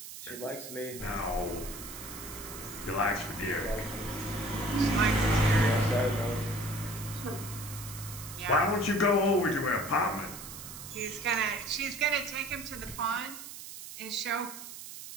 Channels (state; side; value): noise; right; hiss, 11 dB below the sound